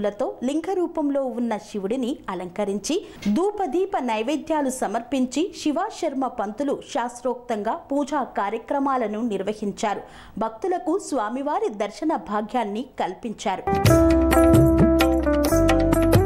లింగ రూపంలో ఉన్న శివుడిని అలంకరించి ధూపదీప నైవేద్యాలు సమర్పించి శివాశర్మ పంతులు శాస్త్రోక్తంగా పూజా కార్యక్రమాలను నిర్వహించారు. భక్తులకు స్వామివారి దర్శన భాగ్యాన్ని కల్పించారు.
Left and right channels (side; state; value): both; identical; correlation 1.00